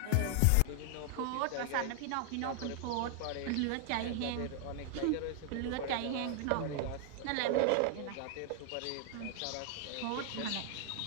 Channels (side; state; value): both; different; correlation 0.00